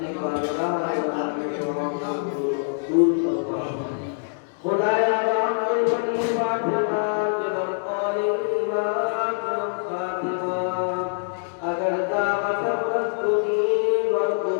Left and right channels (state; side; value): silent; right; digital silence